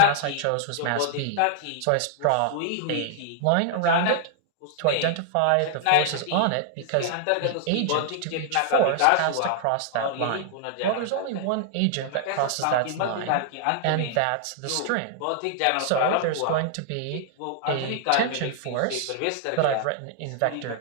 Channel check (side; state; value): both; different; correlation -0.01